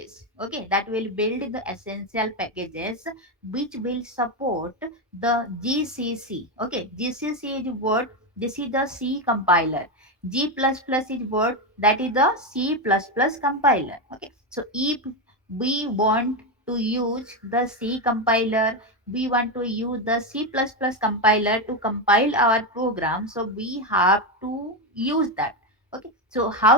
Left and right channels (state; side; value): normal; both; correlation 0.10